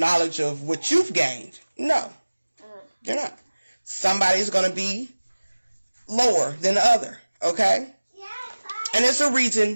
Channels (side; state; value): both; inverted; correlation -1.00